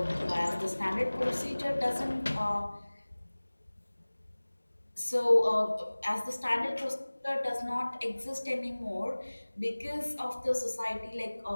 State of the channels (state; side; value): inverted; both; correlation -1.00